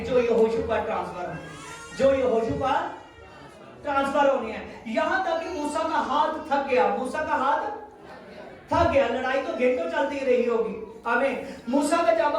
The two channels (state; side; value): identical; both; correlation 1.00